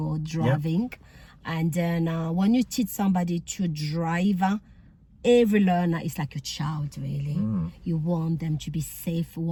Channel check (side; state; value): both; identical; correlation 1.00